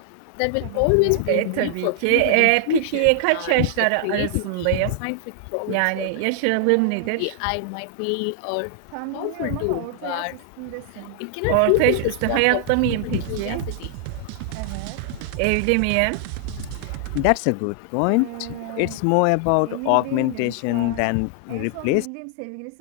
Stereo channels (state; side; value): different; both; correlation 0.00